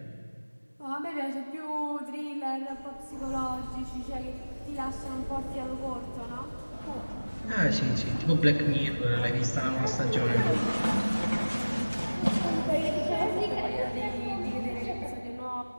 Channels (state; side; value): inverted; both; correlation -1.00